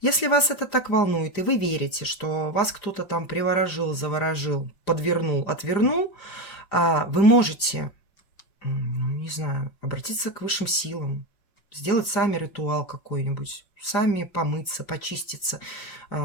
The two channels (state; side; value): late; right; 5.0 ms